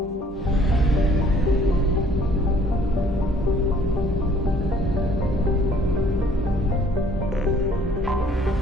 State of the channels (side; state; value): both; normal; correlation 0.58